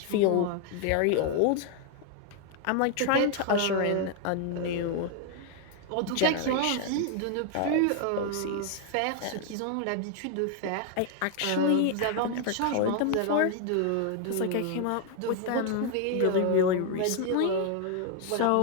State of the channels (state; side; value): different; both; correlation 0.00